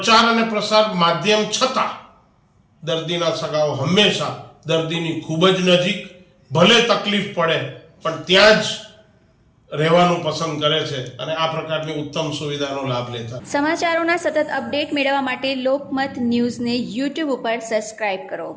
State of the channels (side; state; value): both; identical; correlation 1.00